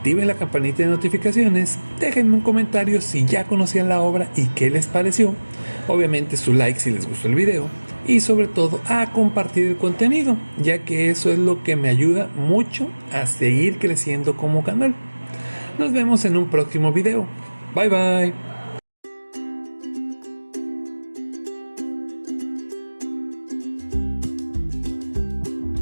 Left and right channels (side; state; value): both; inverted; correlation -1.00